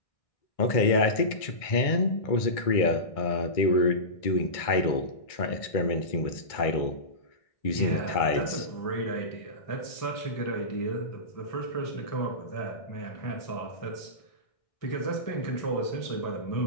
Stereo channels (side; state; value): right; late; 1.6 ms